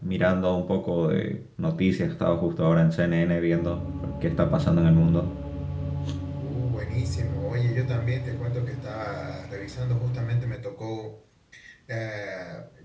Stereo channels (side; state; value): both; identical; correlation 1.00